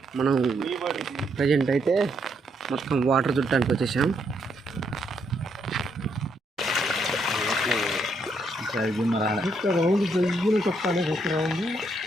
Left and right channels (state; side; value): normal; both; correlation 0.75